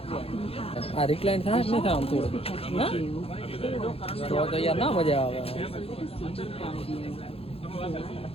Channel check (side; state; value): right; late; 0.28 ms